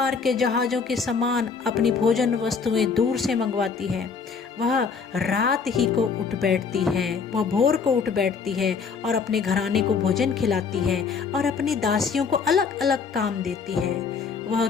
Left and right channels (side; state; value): right; quieter; 5.5 dB